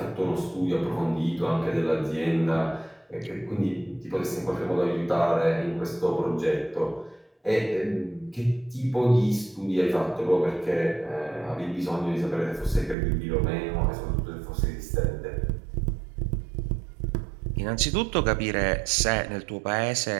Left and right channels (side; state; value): left; drops out; at 13.0 s